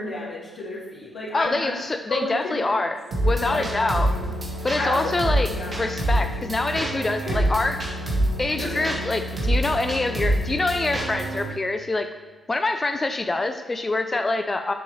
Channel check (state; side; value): normal; both; correlation 0.87